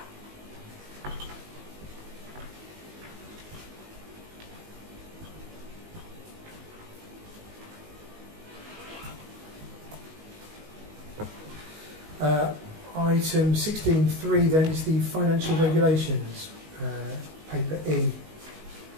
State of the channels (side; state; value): left; late; 19 ms